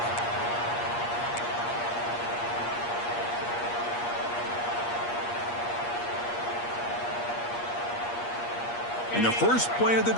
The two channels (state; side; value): late; right; 8.5 ms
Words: In the first play of the